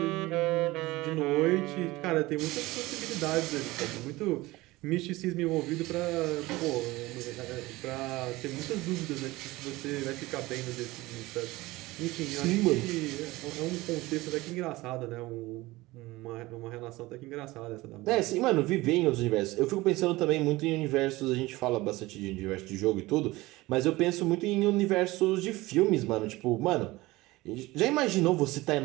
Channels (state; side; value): quieter; left; 19.9 dB